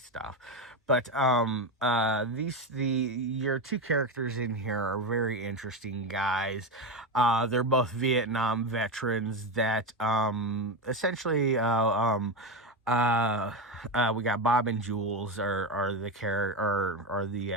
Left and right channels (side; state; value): both; normal; correlation 0.14